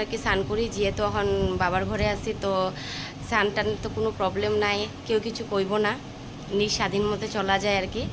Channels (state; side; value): identical; both; correlation 1.00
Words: কি স্নান করি। যেহেতু এখন বাবার ঘরে আছি, তো স্নান টান তো কোনো প্রবলেম নাই, কেউ কিছু কইব না, নিজ স্বাধীন মতো চলা যায় আর কি।